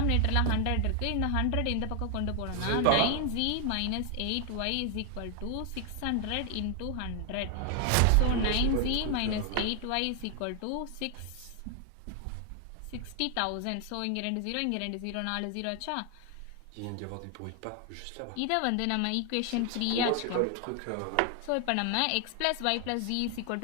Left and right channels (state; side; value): different; both; correlation 0.00